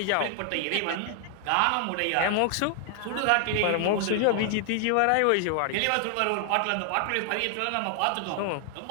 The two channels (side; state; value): both; different; correlation 0.00